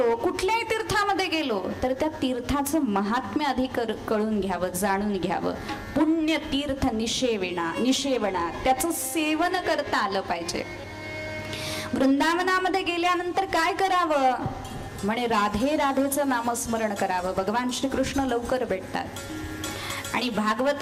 कुठल्याही तीर्थामध्ये गेलो तर त्या तीर्थाचं महात्म्य आधी कळून घ्यावं, जाणून घ्यावं. पुण्य तीर्थ निषेवणा त्याचं सेवन करता आलं पाहिजे. वृंदावनामध्ये गेल्यानंतर काय करावं म्हणे? राधे राधेचं नामस्मरण करावं. भगवान श्रीकृष्ण लवकर भेटतात. आणि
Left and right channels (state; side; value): identical; both; correlation 1.00